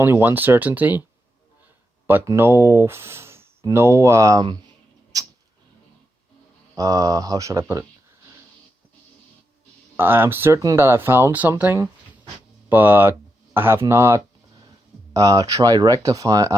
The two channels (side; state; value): both; normal; correlation 0.85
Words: one certainty, but how should I put it? I'm certain that I found something, but I have not tried